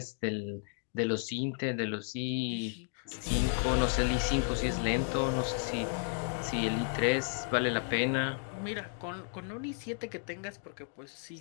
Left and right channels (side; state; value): right; silent; 55 dB below the other